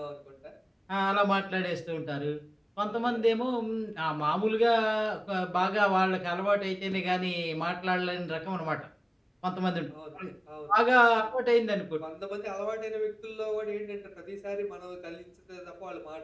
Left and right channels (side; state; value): both; identical; correlation 1.00